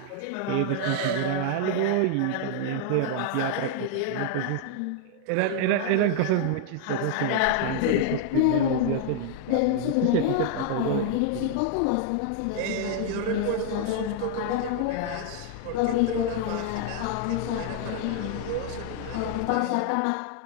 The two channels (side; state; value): both; different; correlation -0.01